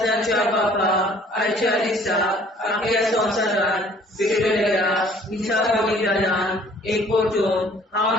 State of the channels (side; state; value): both; normal; correlation 0.56